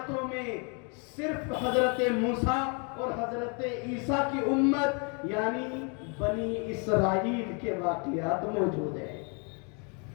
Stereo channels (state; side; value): quieter; right; 36.3 dB